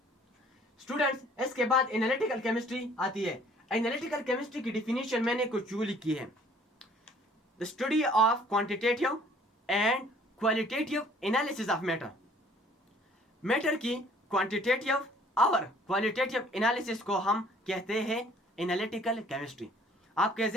स्टूडेंट्स, इसके बाद एनालिटिकल केमिस्ट्री आती है। एनालिटिकल केमिस्ट्री की डिफिनेशन मैंने कुछ यूं लिखी है, the study of quantitative and qualitative analysis of matter. Matter की क्वांटिटेटिव और क्वालिटेटिव एनालिसिस को हम कहते हैं एनालिटिकल केमिस्ट्री। आपके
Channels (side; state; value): both; normal; correlation 0.56